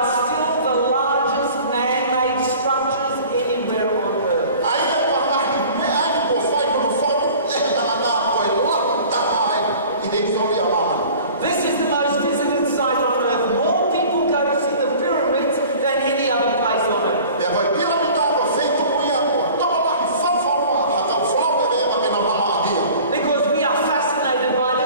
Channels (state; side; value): inverted; both; correlation -0.45